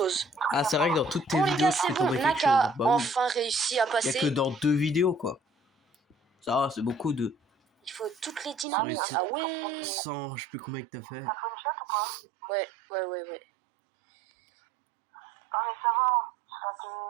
Ah, c'est vrai que dans toutes tes Bon les vidéos, gars, tu c'est fais bon. tomber quelque Nak chose. a Bah oui. enfin réussi à Il y a passer. que dans 2 vidéos, quoi. Ça va, c'est beaucoup de... Il faut toutes les Ça dynamites. réussit. Ah ouais. 100, je sais plus combien que t'as fait. T'as fait une shot ou pas? Ouais. Ah mais ça va. Ça te...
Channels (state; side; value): drops out; left; at 8.7 s